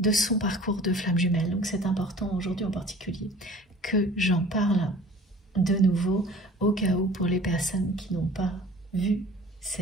son parcours de flamme jumelle. Donc c'est important aujourd'hui en particulier que j'en parle de nouveau, au cas où pour les personnes qui n'ont pas vu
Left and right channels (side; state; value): both; normal; correlation 0.46